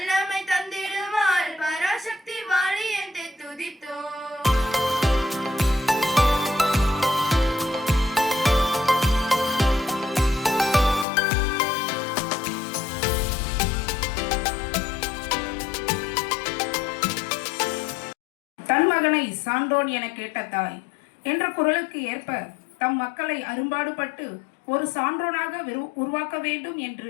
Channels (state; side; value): drops out; right; at 11.1 s